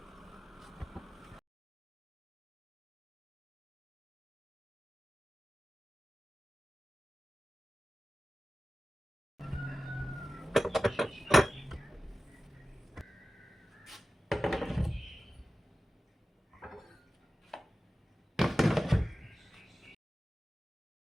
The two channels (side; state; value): both; normal; correlation 0.95